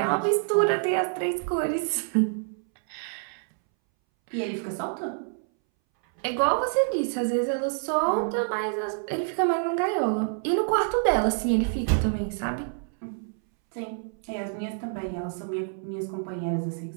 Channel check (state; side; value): silent; left; 60 dB below the other